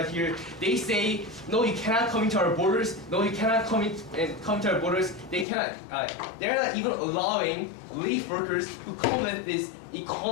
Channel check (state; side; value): drops out; right; at 5.5 s